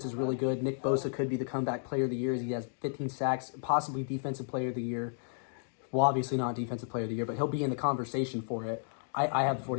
is really good. Nick Bosa could be the comeback player of the year. He has 15 sacks, possibly defensive player of the year. Well, obviously not defensive player of the year, but he'll be in the conversation for it. I have the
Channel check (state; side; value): silent; right; digital silence